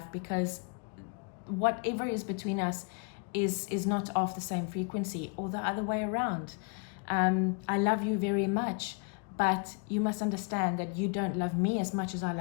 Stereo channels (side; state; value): right; quieter; 36.5 dB